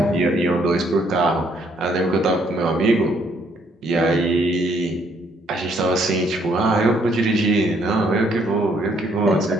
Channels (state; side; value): normal; both; correlation 0.68